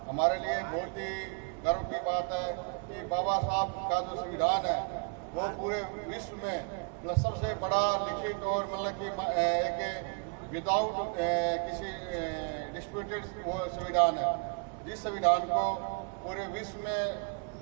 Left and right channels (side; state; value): left; quieter; 36.2 dB